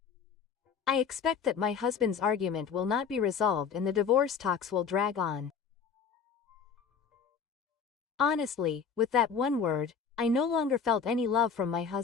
I expect that my husband's argument will not be resolved and the divorce talks will drag on. Honestly, with that one word, I no longer felt any love from my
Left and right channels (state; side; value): quieter; right; 6.4 dB